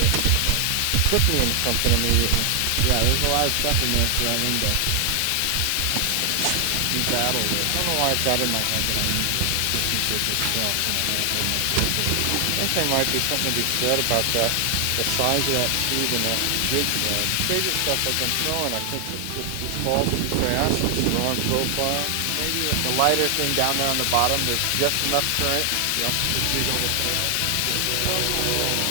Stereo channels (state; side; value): different; both; correlation 0.00